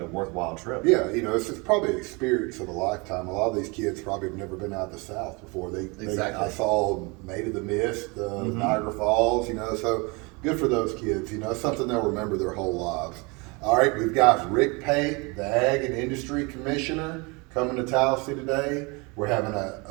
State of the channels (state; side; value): quieter; left; 28.3 dB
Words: a worthwhile trip. Yeah, it's probably an experience of a lifetime. A lot of these kids probably have never been out of the South before. Exactly. I saw Maid of the Mist, Niagara Falls, so good for those kids. It's something they'll remember their whole lives. All right, we've got Rick Pate, the Ag and Industry Commissioner, coming to Tallassee today. We're having